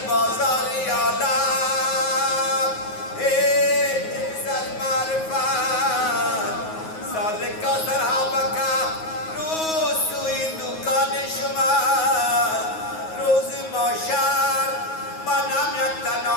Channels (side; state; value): right; late; 9.4 ms